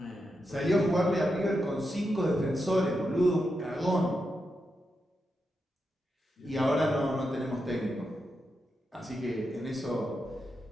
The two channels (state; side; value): normal; both; correlation 0.86